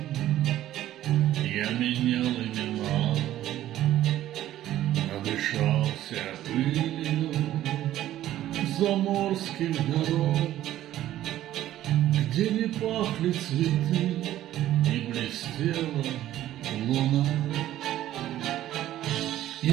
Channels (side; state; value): left; quieter; 13.3 dB